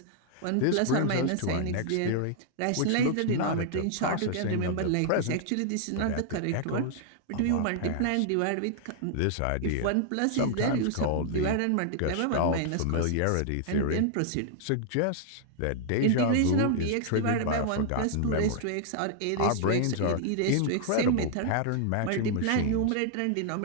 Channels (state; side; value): different; both; correlation -0.01